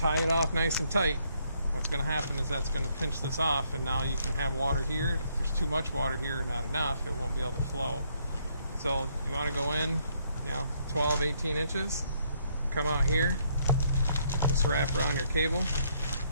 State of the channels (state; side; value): inverted; both; correlation -0.71